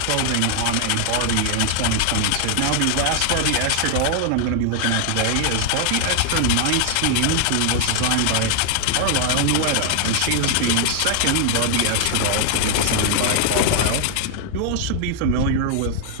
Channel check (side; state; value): both; different; correlation 0.00